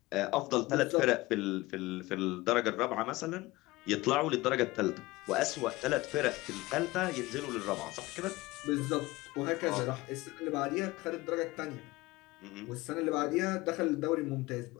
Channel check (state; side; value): quieter; right; 20.2 dB